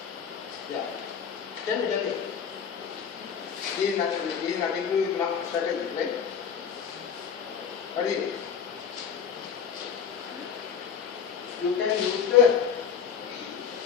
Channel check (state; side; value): quieter; right; 7.3 dB